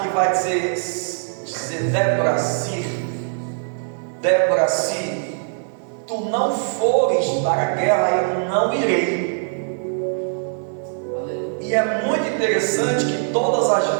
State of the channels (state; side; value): silent; left; 60 dB below the other